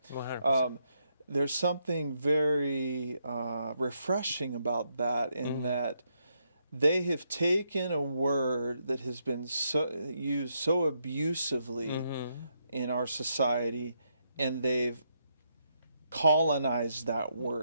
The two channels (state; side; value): inverted; both; correlation -0.78